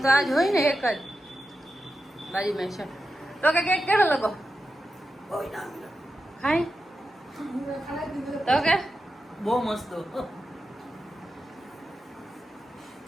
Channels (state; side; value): normal; both; correlation 0.90